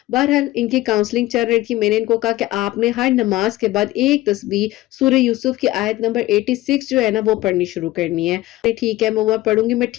بہرحال ان کی کاؤنسلنگ چل رہی تھی، میں نے ان کو کہا کہ آپ نے ہر نماز کے بعد ایک تسبیح سورہ یوسف کی آیت نمبر 86 جو ہے نا وہ پڑھنی شروع کرنی ہے۔ ٹھیک ہے میں وہ پڑھوں گی، میں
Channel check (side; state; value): right; quieter; 17.0 dB